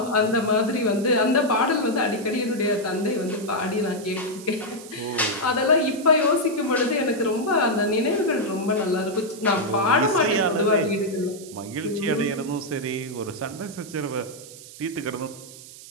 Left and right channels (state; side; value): noise; right; hiss, 17 dB below the sound